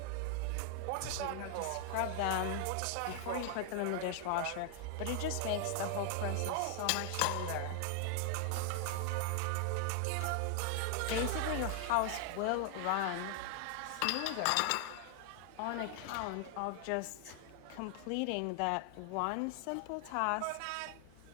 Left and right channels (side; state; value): both; different; correlation 0.00